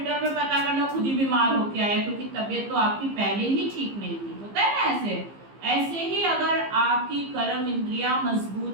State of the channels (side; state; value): left; late; 15 ms